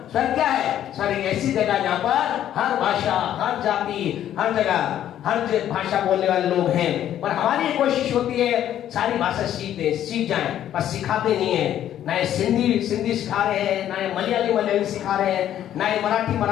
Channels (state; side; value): quieter; right; 11.2 dB